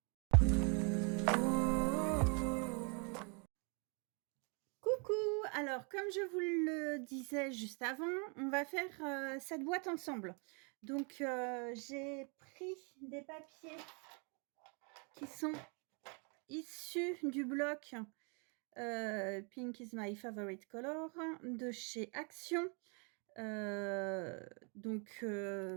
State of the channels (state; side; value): quieter; left; 36.2 dB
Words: Coucou! Alors comme je vous le disais juste avant, on va faire cette boîte ensemble. Donc j'ai pris des papiers qui sont issus du bloc Pink is my favorite color de chez Action. Je